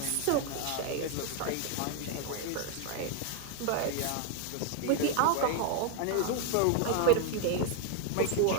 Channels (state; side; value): different; both; correlation 0.00